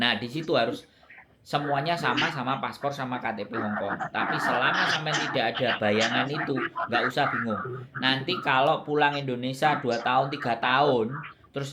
Nah, di situ harus semuanya sama paspor sama KTP Hong Kong. Tapi selama sampai tidak ada bayangan itu, nggak usah bingung. Nanti kalau pulang Indonesia 2 tahun, 3 tahun,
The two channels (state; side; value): identical; both; correlation 1.00